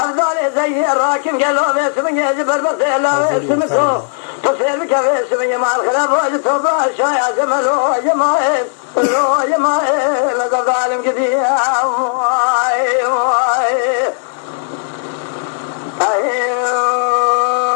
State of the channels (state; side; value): silent; right; digital silence